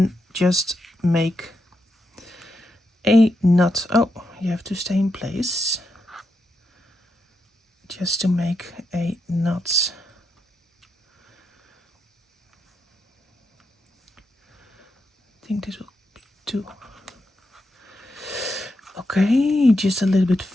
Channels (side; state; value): both; normal; correlation 0.84